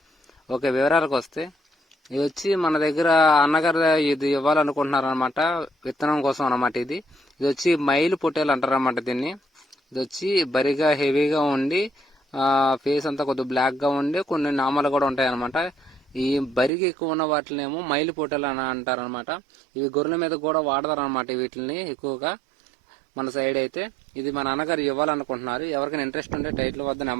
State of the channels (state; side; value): drops out; left; at 16.7 s